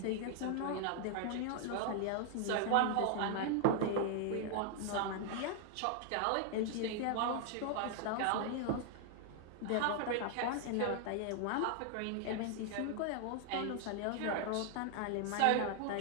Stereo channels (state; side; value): different; both; correlation 0.00